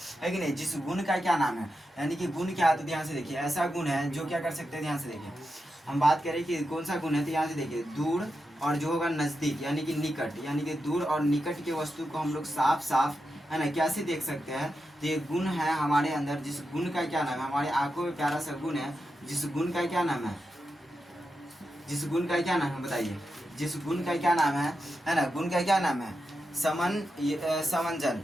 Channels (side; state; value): both; normal; correlation 0.88